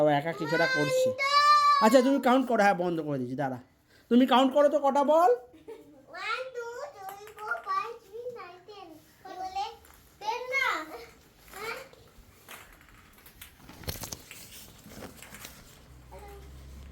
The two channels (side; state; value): both; identical; correlation 1.00